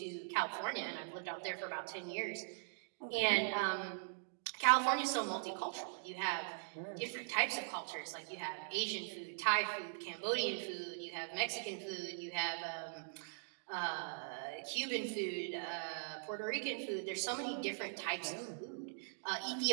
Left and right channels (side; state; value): left; silent; digital silence